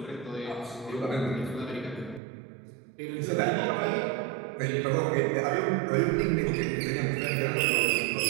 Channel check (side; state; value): left; drops out; at 2.2 s